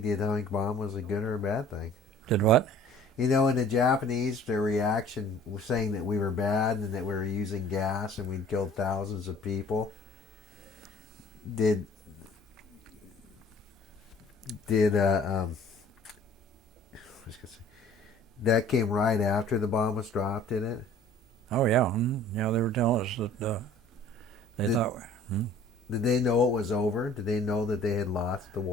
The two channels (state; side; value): normal; both; correlation 0.51